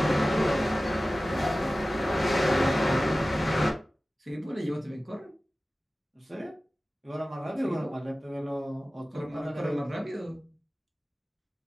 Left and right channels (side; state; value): both; normal; correlation 0.96